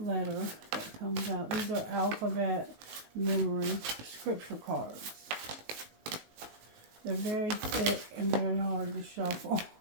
that comes out. These are alphabet memory scripture cards. They're very thick and very hard to shuffle.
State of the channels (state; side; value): late; left; 19 ms